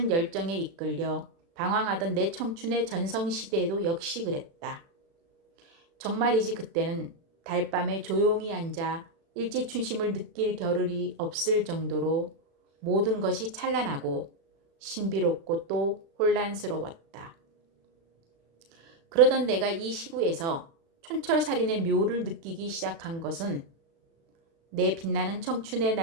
열정에 이끌려 방황하던 내 청춘의 전성시대에도 역시 그랬다. 정말이지 그때는 달밤에 조용히 앉아 일지춘심을 느낄 겨를이 없을 정도로 모든 것이 찬란하고 신비롭고 또 혼란스러웠다. 그러던 내가 이 시구에서 촌철살인의 묘를 느끼기 시작한 것은 내 빛나는 청춘의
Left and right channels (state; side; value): late; left; 36 ms